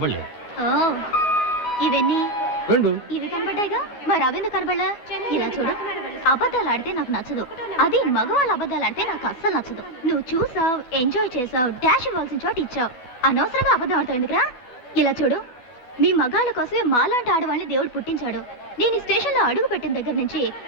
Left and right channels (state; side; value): late; right; 12 ms